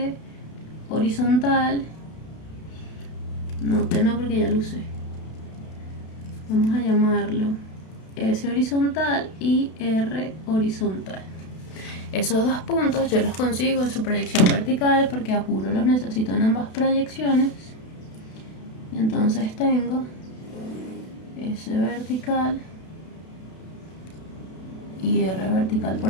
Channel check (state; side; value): late; right; 32 ms